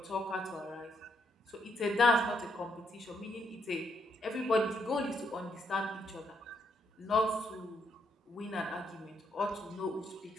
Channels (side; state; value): both; normal; correlation 0.76